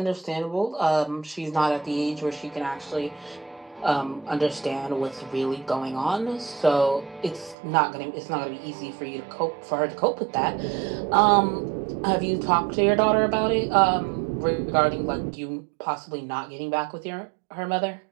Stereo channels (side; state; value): left; drops out; at 7.6 s